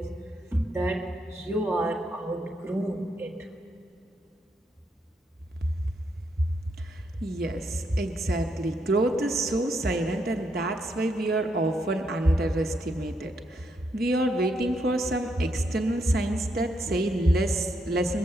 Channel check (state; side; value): normal; both; correlation 0.78